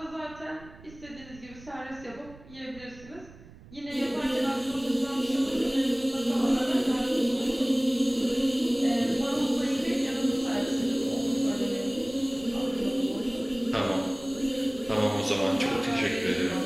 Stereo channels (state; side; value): noise; right; rumble, 20 dB below the sound